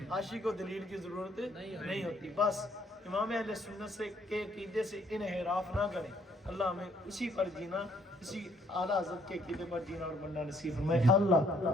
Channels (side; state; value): both; normal; correlation 0.66